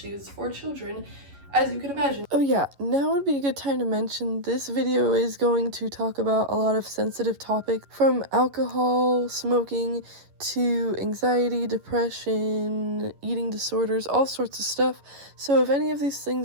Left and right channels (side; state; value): left; late; 11 ms